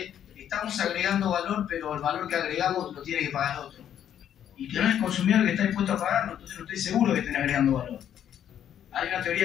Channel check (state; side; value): quieter; right; 9.9 dB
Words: estamos agregando valor, pero el valor que agregamos lo tiene que pagar otro. Y que no es el consumidor que está dispuesto a pagarlo, entonces no estoy seguro que estén agregando valor. Hay una